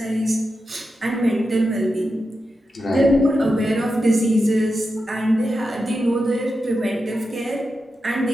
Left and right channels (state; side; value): normal; both; correlation 0.89